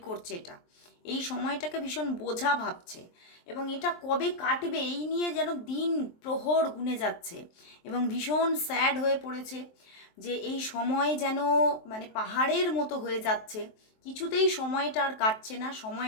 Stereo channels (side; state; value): right; late; 23 ms